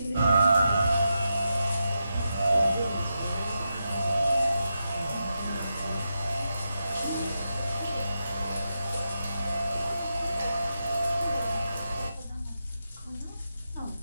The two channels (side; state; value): both; inverted; correlation -0.87